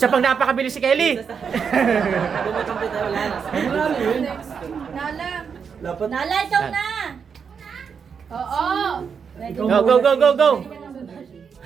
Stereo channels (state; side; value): quieter; left; 6.5 dB